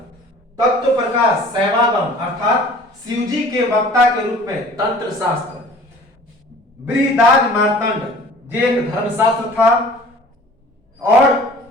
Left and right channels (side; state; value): both; normal; correlation 0.48